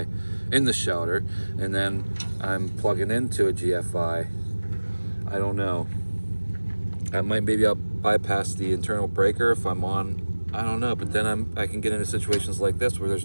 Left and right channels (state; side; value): inverted; both; correlation -1.00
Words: in the shelter, and then I'm plugging into a GFI. I don't know. Maybe I'll bypass the internal breaker if I'm on. I don't know, but then I can get into situations like this where there's